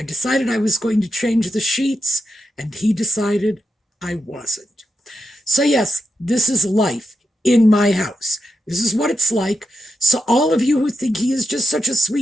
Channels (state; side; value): normal; both; correlation 0.86